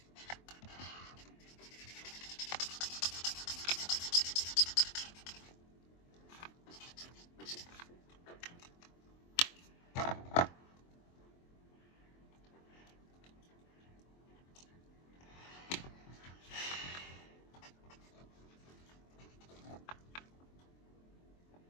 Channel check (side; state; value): right; late; 23 ms